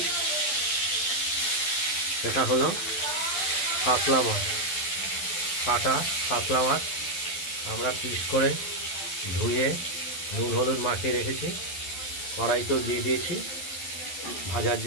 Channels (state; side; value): late; right; 12 ms